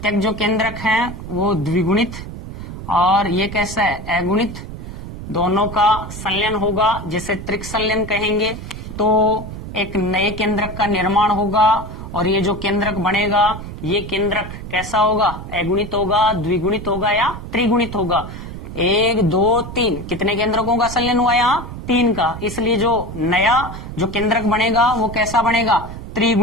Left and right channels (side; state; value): right; noise; rumble, 10 dB below the sound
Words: जो केंद्रक है वो द्विगुणित और ये कैसा है, अगुणित। दोनों का संलयन होगा जिसे त्रिक संलयन कहेंगे। तो एक नए केंद्रक का निर्माण होगा और ये जो केंद्रक बनेगा ये केंद्रक कैसा होगा, अगुणित होगा, द्विगुणित होगा या त्रिगुणित होगा। 1 2 3 कितने केंद्रकों का संलयन हुआ, यहाँ 3 का। इसलिए जो नया जो केंद्रक बनेगा वो कैसा बनेगा,